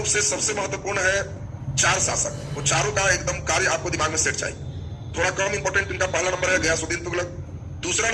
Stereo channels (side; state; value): both; identical; correlation 1.00